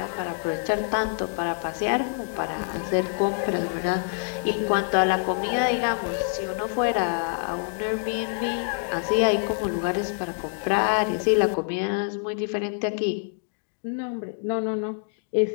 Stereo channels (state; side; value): silent; right; digital silence